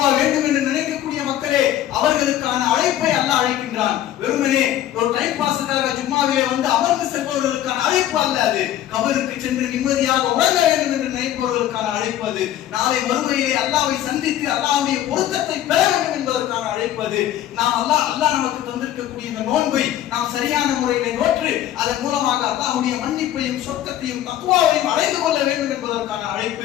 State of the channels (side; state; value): right; quieter; 12.3 dB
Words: வேண்டும் என்று நினைக்கக்கூடிய மக்களே, அவர்களுக்கான அழைப்பை அல்லாஹ் அழைக்கின்றான். வெறுமனே ஒரு டைம் பாஸுக்காக ஜும்மாவிலே வந்து அமர்ந்து செல்பவர்களுக்கான அழைப்பு அல்ல அது. கபருக்கு சென்று நிம்மதியாக உறங்க வேண்டும் என்று நினைப்பவர்களுக்கான அழைப்பு அது. நாளை மறுமையிலே அல்லாஹ்வை சந்தித்து அல்லாஹ்வுடைய பொருத்தத்தை பெற வேண்டும் என்பதற்கான அழைப்பு அது. நாம் அல்லாஹ் நமக்கு தந்திருக்கக்கூடிய இந்த நோன்பை நாம் சரியான முறையிலே நோற்று அதன் மூலமாக அல்லாஹ்வுடைய மன்னிப்பையும் சொர்க்கத்தையும் தக்வாவையும் அடைந்து கொள்ள வேண்டும் என்பதற்கான